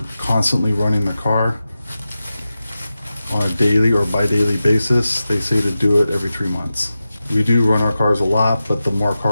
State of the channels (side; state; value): both; inverted; correlation -0.93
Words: constantly running the car on a daily or bi-daily basis, they say to do it every 3 months. We do run our cars a lot, but the more